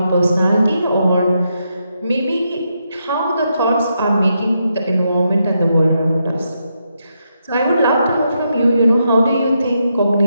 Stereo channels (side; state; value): both; inverted; correlation -0.82